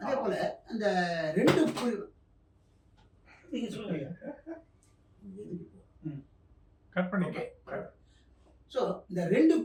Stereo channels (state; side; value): identical; both; correlation 1.00